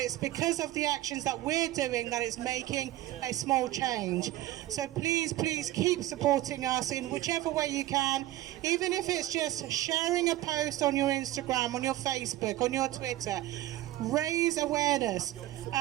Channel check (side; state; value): left; quieter; 15.4 dB